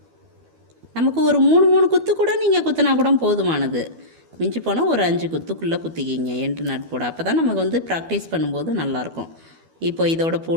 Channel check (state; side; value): late; left; 12 ms